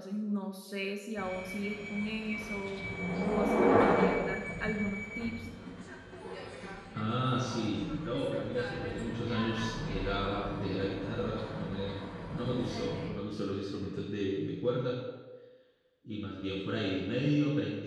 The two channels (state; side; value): identical; both; correlation 1.00